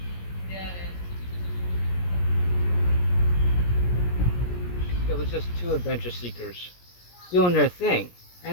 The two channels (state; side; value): late; right; 17 ms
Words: It was just two adventure seekers doing their thing.